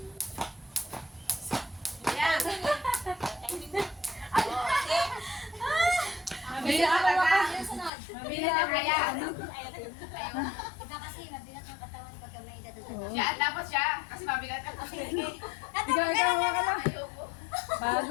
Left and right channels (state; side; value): drops out; right; at 7.9 s